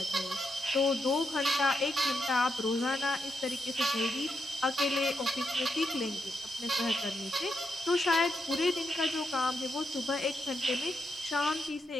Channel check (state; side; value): normal; both; correlation 0.83